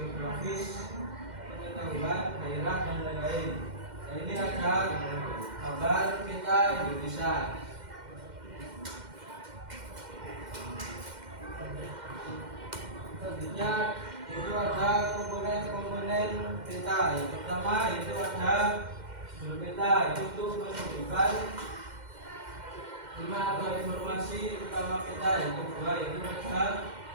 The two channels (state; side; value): late; left; 2.1 ms